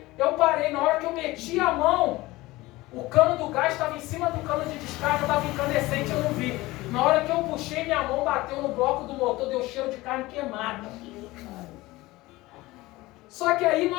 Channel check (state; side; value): quieter; right; 19.6 dB